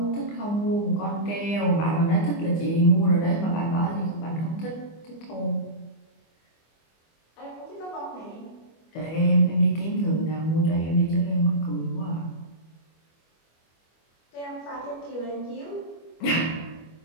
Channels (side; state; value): right; late; 25 ms